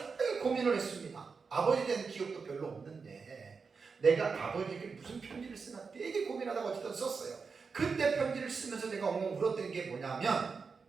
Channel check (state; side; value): quieter; left; 5.1 dB